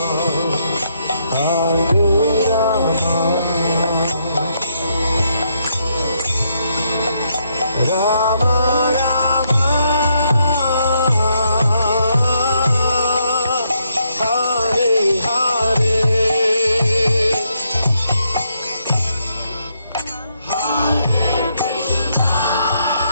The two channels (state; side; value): inverted; both; correlation -0.75